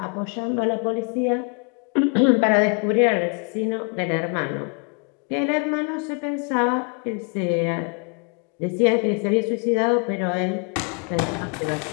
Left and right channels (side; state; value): right; quieter; 38.7 dB